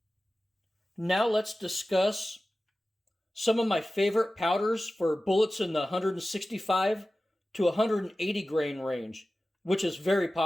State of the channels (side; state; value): both; normal; correlation 0.95